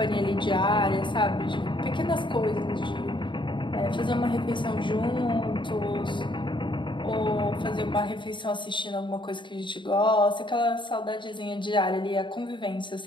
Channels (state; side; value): late; right; 0.23 ms